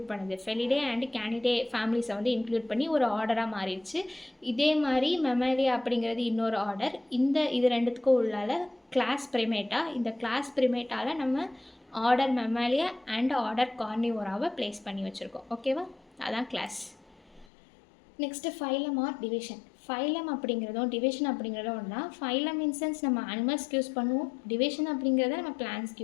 பண்ணுது? ஃபெலிடே அண்ட் கேனிடே ஃபேமிலிஸை வந்து இன்க்ளூட் பண்ணி ஒரு ஆர்டராக மாறிடுச்சு. இதே மாதிரி மெமாலியா அப்படிங்கிறது இன்னொரு ஆர்டர். இது ரெண்டுத்துக்கும் உள்ளால கிளாஸ் பிரிமேட்டா. இந்த கிளாஸ் பிரிமேட்டாவில் நம்ம ஆர்டர் மெமாலியா அண்ட் ஆர்டர் கார்னிவோராவை பிளேஸ் பண்ணி வச்சுருக்கோம். ஓகேவா? அதான் class. Next phylum or division. Phylum அப்படிங்கிறதும் டிவிஷன் அப்படிங்கிறதும் ஒன்றா. ஃபைலம் இன்சென்ஸ் நம்ம அனிமல்ஸ்க்கு யூஸ் பண்ணுவோம், டிவிஷன் அப்படிங்கிறத நம்ம பிளான்ஸ்க்கு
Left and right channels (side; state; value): right; drops out; at 17.4 s